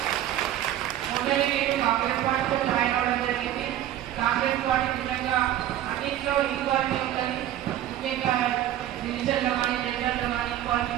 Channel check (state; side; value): quieter; left; 12.2 dB